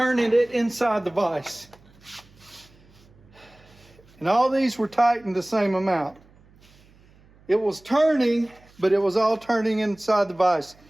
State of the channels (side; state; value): right; noise; hum, 28 dB below the sound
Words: it inside the vise. And all these were tightened the same amount. It was turning, but it was all turning inside the vise.